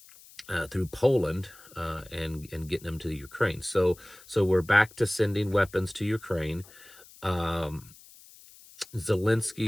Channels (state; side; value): noise; left; hiss, 22 dB below the sound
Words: and getting them to Ukraine. So we're back to sending weapons to Ukraine.